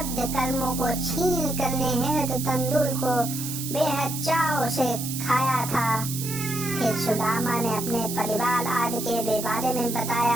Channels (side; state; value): right; noise; hiss, 6 dB below the sound